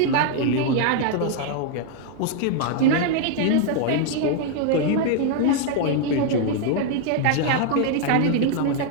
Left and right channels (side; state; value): both; different; correlation 0.00